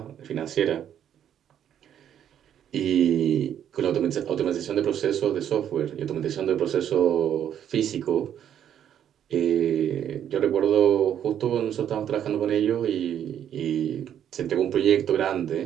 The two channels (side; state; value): left; quieter; 9.8 dB